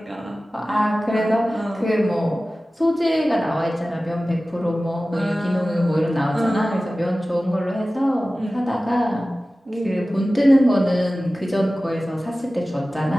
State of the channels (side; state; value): both; normal; correlation 0.96